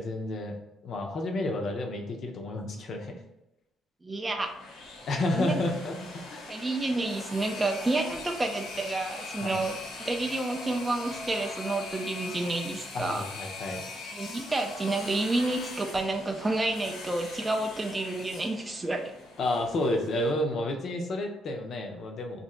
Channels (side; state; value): both; normal; correlation 0.79